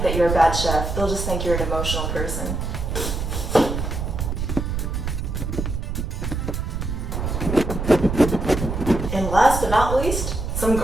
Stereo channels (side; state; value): right; noise; rumble, 3 dB below the sound